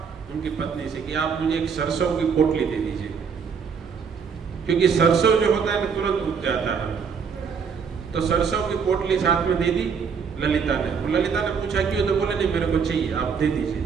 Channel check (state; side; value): quieter; left; 6.2 dB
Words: उनकी पत्नी से कि आप मुझे एक सरसों की पोटली दे दीजिए, क्योंकि सरसों जो होता है तुरंत उग जाता है। तो सरसों की पोटली साथ में दे दी ललिता ने। ललिता ने पूछा क्यों, तो बोले नहीं मेरे को चाहिए, आप दे दीजिए।